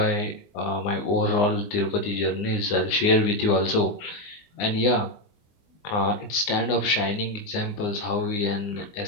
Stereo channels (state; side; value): late; right; 19 ms